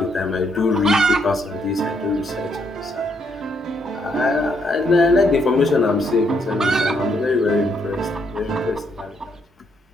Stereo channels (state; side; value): normal; both; correlation 0.74